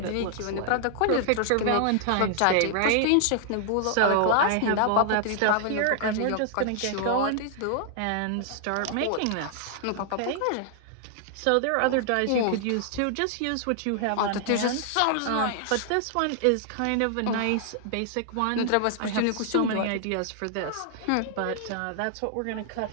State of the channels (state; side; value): different; both; correlation 0.00